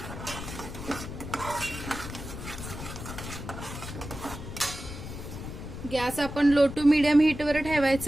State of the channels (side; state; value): left; noise; rumble, 9 dB below the sound